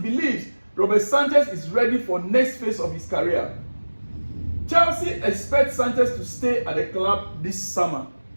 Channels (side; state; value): both; inverted; correlation -1.00